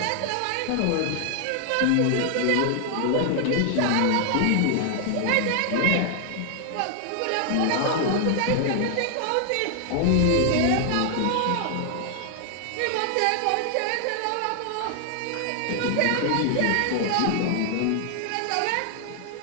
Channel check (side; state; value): both; different; correlation 0.00